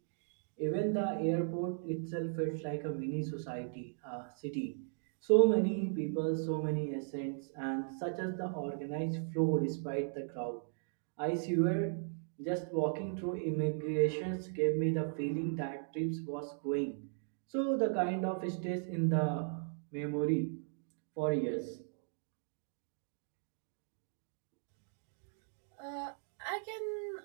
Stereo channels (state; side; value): silent; left; digital silence